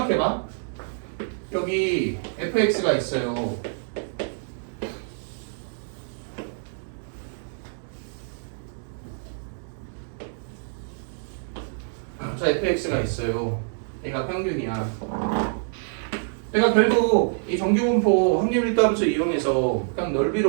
여기 fx가 있어요. 자, fx가 있어요. 얘가 평균이야. 그러니까 결국 이 정규분포 확률 일도함수 이용해서 그냥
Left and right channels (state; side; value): silent; left; digital silence